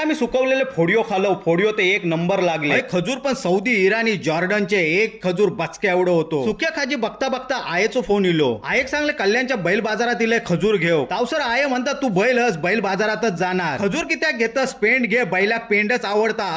सुकवलेले फोडिओ खालो. फोडिओ ते एक नंबर लागले. खजूर पण सौदी, इराणी, जॉर्डनचे एक खजूर बचक्या एवढं होतो. सुक्या खाजी बघता बघता आयेचो फोन इलो. आयेक सांगले कल्याणच्या बैल बाजारात इले खजूर घेऊ. तावसर आये म्हणतात तू बैल हस, बैल बाजारातच जाणार. खजूर कित्याक घेतस? पेंड घे, बैलाक पेंडच आवडता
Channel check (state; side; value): identical; both; correlation 1.00